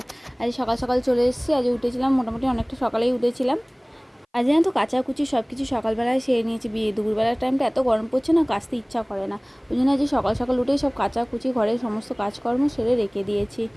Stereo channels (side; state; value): both; identical; correlation 1.00